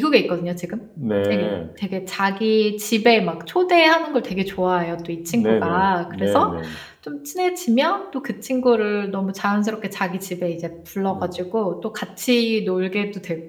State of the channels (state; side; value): identical; both; correlation 1.00